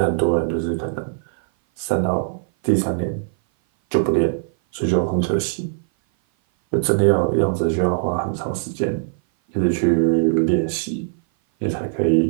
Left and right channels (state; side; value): silent; left; 58 dB below the other